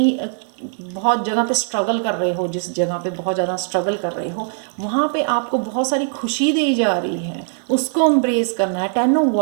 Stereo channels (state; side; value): silent; left; digital silence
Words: बहुत जगह पे स्ट्रगल कर रहे हो, जिस जगह पे बहुत ज़्यादा स्ट्रगल कर रहे हो, वहाँ पे आपको बहुत सारी खुशी दी जा रही है, उसको एम्ब्रेस करना है। 10 ऑफ